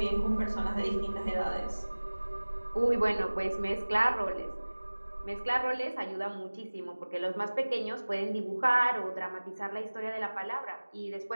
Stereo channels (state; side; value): inverted; both; correlation -1.00